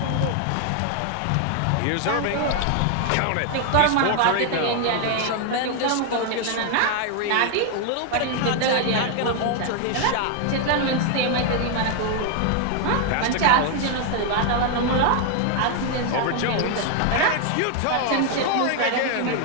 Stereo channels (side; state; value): both; different; correlation 0.00